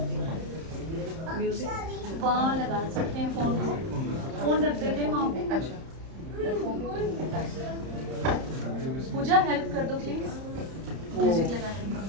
वहाँ लगा सकते हैं फोन को, फोन रख देते हैं वहाँ पे। अच्छा पूजा हेल्प कर दो प्लीज, म्यूजिक लगा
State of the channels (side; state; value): left; late; 31 ms